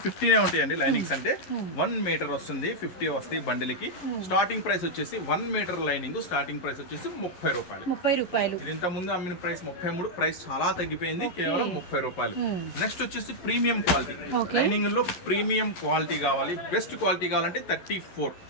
50నే ఉంటాయండి. లైనింగ్స్ అంటే 1 మీటర్ వస్తుంది, 50 వస్తాయి బండిల్కి. స్టార్టింగ్ ప్రైస్ వచ్చేసి 1 మీటర్ లైనింగ్ స్టార్టింగ్ ప్రైస్ వచ్చేసి 30 రూపాయలు. ఇది ఇంత ముందు అమ్మిన ప్రైస్ 33, ప్రైస్ చాలా తగ్గిపోయింది, కేవలం 30 రూపాయలు. నెక్స్ట్ వచ్చేసి ప్రీమియం క్వాలిటీ. లైనింగ్ లో ప్రీమియం క్వాలిటీ కావాలి, బెస్ట్ క్వాలిటీ కావాలంటే 34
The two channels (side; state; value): right; late; 11 ms